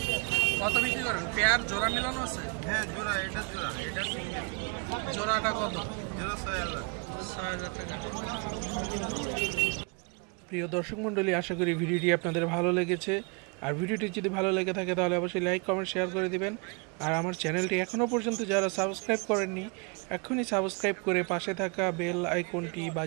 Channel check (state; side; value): quieter; left; 33.1 dB